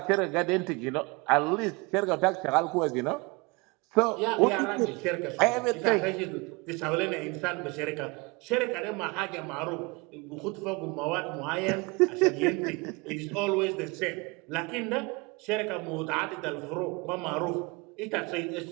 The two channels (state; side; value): quieter; left; 27.0 dB